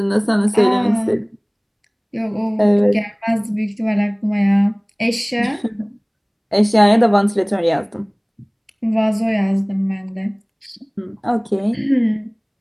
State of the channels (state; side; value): identical; both; correlation 1.00